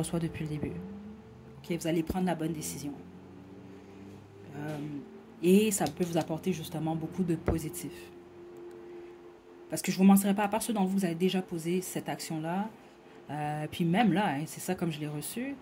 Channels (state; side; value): identical; both; correlation 1.00